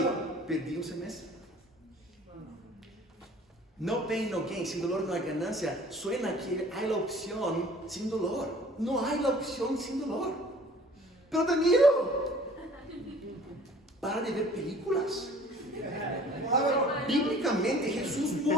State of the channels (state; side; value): normal; both; correlation 0.50